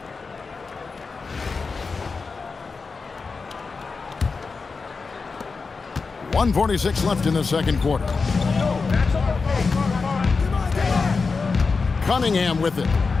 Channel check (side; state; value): right; quieter; 4.5 dB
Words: .146 left in the second quarter. Cunningham with it.